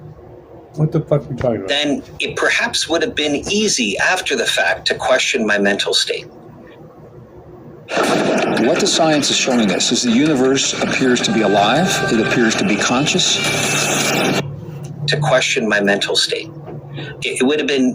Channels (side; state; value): both; identical; correlation 1.00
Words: What the fuck are we talking about? Then it perhaps would have been easy after the fact to question my mental state. What the science is showing us is the universe appears to be alive. It appears to be conscious. To question my mental state. It would have